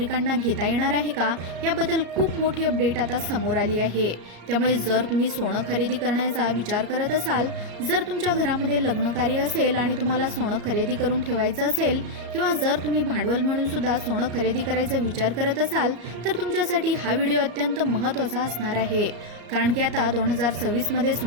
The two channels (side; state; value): left; late; 34 ms